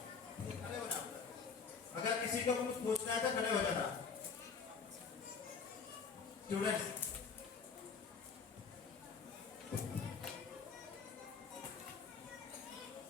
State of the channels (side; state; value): right; quieter; 5.6 dB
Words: खड़े हो जाओ। अगर किसी को कुछ पूछना है तो खड़े हो जाना। Students